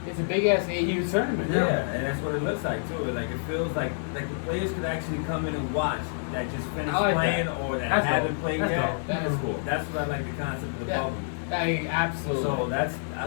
It's a big-ass AU tournament. Yeah, and that's what it looks like too. Like it feels like the players could actually come in and watch that just finished I like playing that. or that That's haven't dope. played That's yet. dope. That is cool. That's what I like the concept of the Yeah. bubble. Absolutely. So I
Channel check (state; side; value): silent; right; digital silence